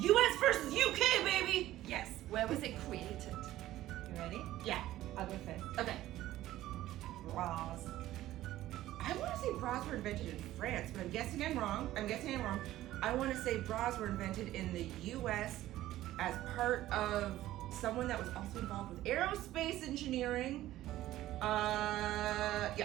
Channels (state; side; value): quieter; left; 14.8 dB